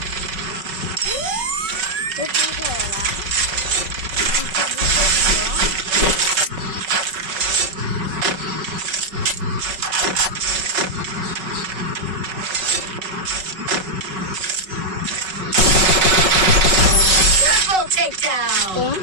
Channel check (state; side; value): late; left; 5.3 ms